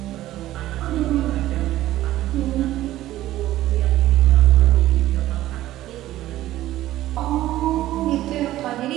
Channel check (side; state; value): left; quieter; 14.7 dB